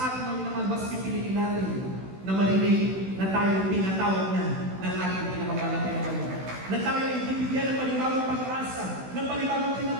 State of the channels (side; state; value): left; late; 16 ms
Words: mga minamahal, mas pipiliin natin na marinig na tayo pinatawag na ng ating pinakamahal na Panginoon. Na tayo ay bibigyan ng panibagong pag-asa, ng panibagong